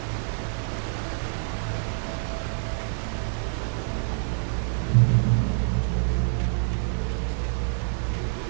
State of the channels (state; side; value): silent; left; 60 dB below the other